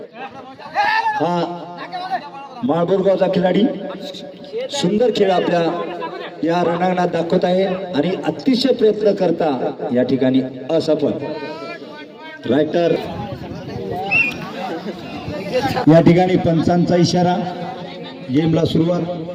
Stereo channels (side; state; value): both; identical; correlation 1.00